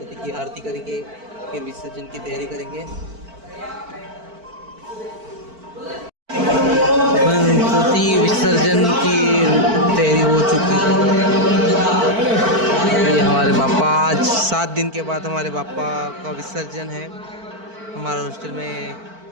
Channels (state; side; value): late; left; 4.5 ms